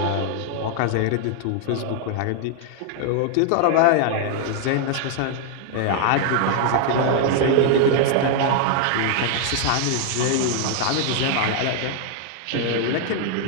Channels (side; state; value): both; different; correlation 0.00